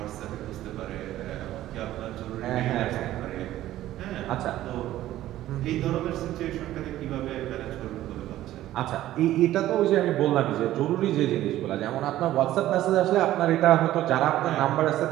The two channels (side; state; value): left; quieter; 14.1 dB